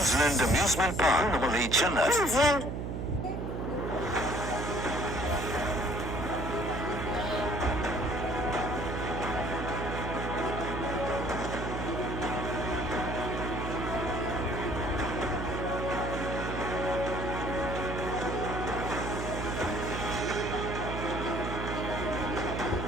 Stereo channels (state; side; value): noise; right; hum, 3 dB below the sound